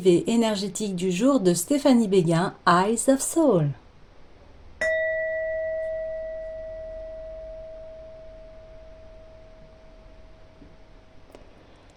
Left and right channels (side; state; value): both; identical; correlation 1.00